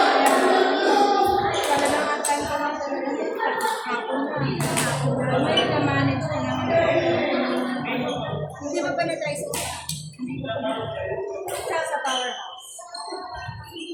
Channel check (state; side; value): identical; both; correlation 1.00